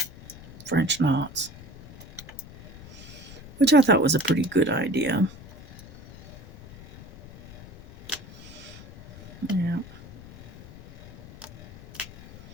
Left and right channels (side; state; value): left; noise; rumble, 17 dB below the sound